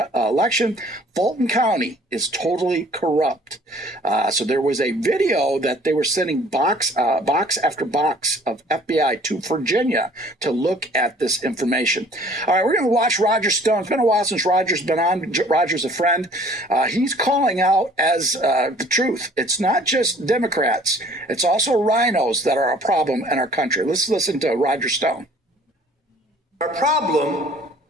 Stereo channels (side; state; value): both; normal; correlation 0.54